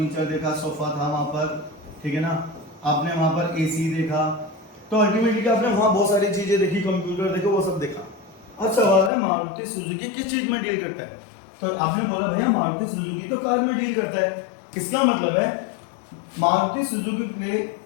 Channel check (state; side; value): drops out; right; at 9.1 s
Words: देखा, सोफा था वहां पर, ठीक है ना, आपने वहां पर एसी देखा। तो अल्टीमेटली आपने वहां बहुत सारी चीजें देखी, कंप्यूटर देखो, वो सब देखा। अब सवाल है मारुति सुजुकी किस चीज में डील करता है। तो आपने बोला भैया मारुति सुजुकी तो कार में डील करता है। इसका मतलब है मारुति सुजुकी के लिए